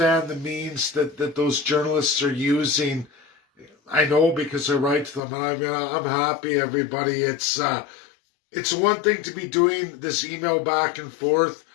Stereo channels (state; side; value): drops out; right; at 5.2 s